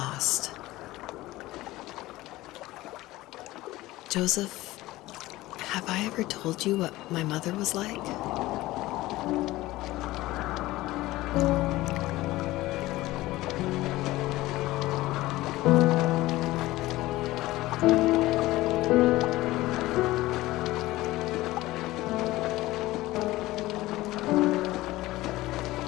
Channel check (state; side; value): quieter; right; 17.9 dB